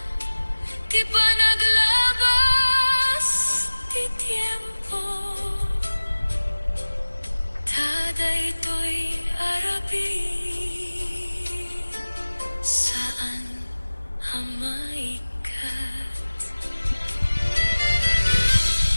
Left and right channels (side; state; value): both; inverted; correlation -1.00